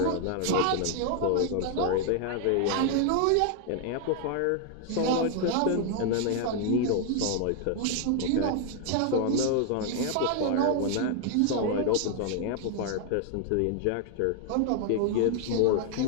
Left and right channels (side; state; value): both; different; correlation 0.00